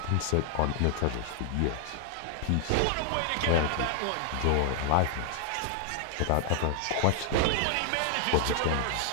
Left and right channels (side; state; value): both; different; correlation 0.00